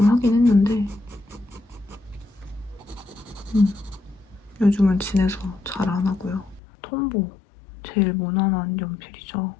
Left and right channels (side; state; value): right; drops out; at 6.6 s